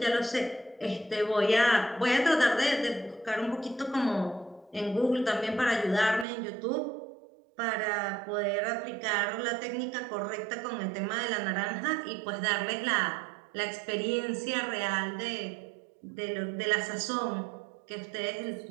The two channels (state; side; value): drops out; left; at 6.2 s